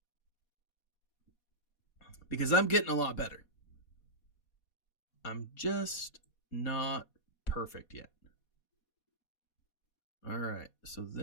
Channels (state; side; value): late; right; 4.2 ms